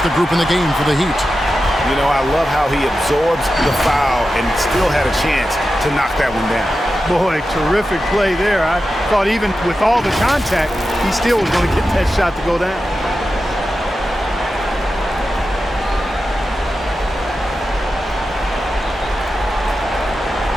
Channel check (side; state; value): both; normal; correlation 0.91